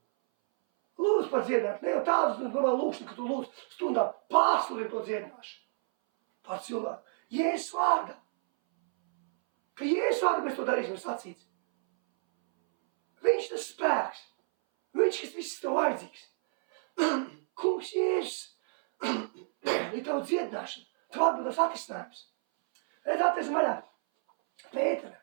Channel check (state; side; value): silent; left; 58 dB below the other